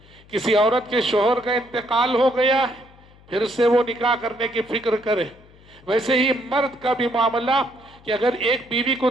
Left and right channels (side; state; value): left; noise; hum, 26 dB below the sound